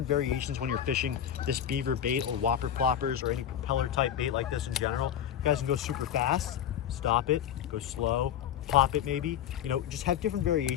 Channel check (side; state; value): right; quieter; 10.0 dB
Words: variations when you're fishing this beaver bait or whopper ploppers or any propeller type bait like this in general. You guys can go super fast, stop it, go slow, pop it maybe. You know, just have different